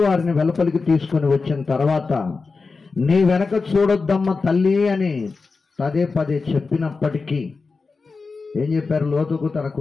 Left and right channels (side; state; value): right; quieter; 4.3 dB